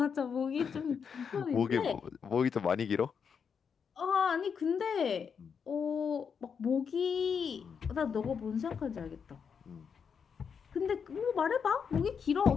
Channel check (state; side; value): quieter; right; 6.6 dB